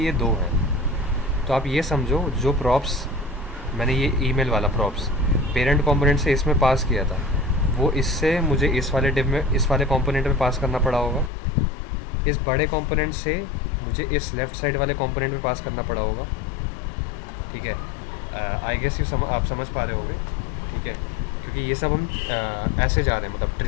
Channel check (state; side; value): drops out; right; at 11.3 s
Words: ये 2 हैं। तो आप ये समझो, जो प्रॉप्स मैंने ये ईमेल वाला प्रॉप्स पेरेंट कंपोनेंट से इसमें पास किया था, वो इससे मुझे इस वाले डिव में, इस वाले कंपोनेंट में पास करना पड़ा होगा। इस बड़े कंपोनेंट से मुझे इस लेफ़्ट साइड वाले कंपोनेंट में पास करना पड़ा होगा, ठीक है। आई गेस आप समझ पा रहे होगे, ठीक है, क्योंकि ये सब हम ऐसे जा रहे हैं, मतलब